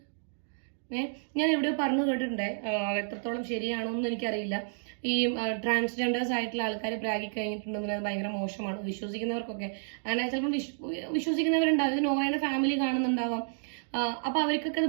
ഞാൻ എവിടെയോ പറഞ്ഞു കേട്ടിട്ടുണ്ട്, എത്രത്തോളം ശരിയാണോ എന്ന് എനിക്കറിയില്ല. ഈ ട്രാൻസ്ജെൻഡേഴ്സ് ആയിട്ടുള്ള ആൾക്കാർ പ്രാഗി കഴിഞ്ഞിട്ടുണ്ടെങ്കിൽ അത് ഭയങ്കര മോശമാണ്. വിശ്വസിക്കുന്നവർക്കൊക്കെ അങ്ങനെ ചിലപ്പോൾ വിശ്വസിക്കുന്നവരുണ്ടാവും, ഇത് നോയുടെ ഫാമിലി കാണുന്നുണ്ടാവാം. അപ്പൊ അവർക്കൊക്കെ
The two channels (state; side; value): silent; left; digital silence